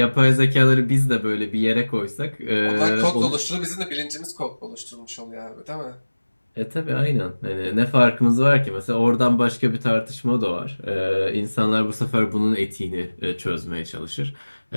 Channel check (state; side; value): inverted; both; correlation -1.00